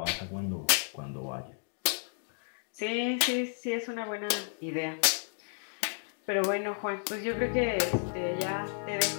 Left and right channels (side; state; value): right; silent; digital silence